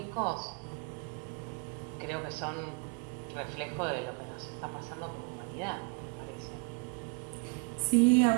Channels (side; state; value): left; quieter; 33.5 dB